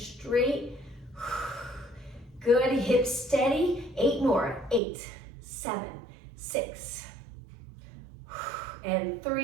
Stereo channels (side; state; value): left; drops out; at 4.8 s